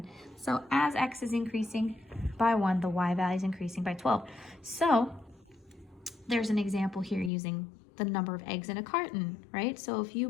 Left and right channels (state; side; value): drops out; right; at 7.3 s